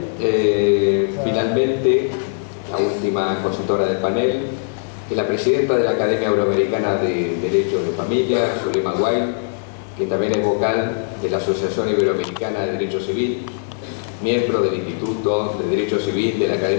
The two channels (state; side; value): silent; right; 56 dB below the other